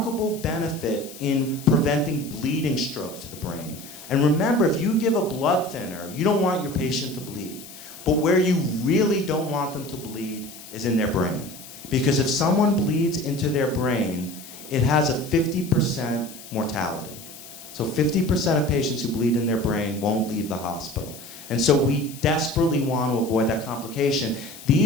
benefit in preventing bleeding strokes to the brain. And remember, if you give a blood thinner, you don't want your patient to bleed. But where you really don't want them to bleed is in their brain. Because if someone bleeds into their brain, it has a 50% mortality. So 50% of patients who bleed in their brain won't leave the hospital. And so we desperately want to avoid that complication.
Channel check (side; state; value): left; noise; hiss, 16 dB below the sound